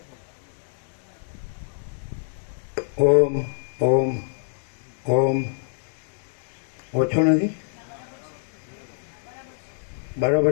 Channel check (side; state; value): right; silent; digital silence